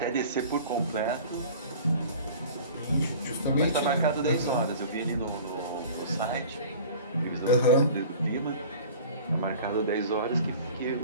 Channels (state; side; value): inverted; both; correlation -0.42